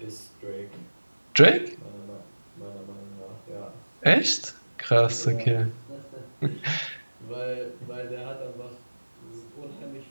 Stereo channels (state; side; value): inverted; both; correlation -1.00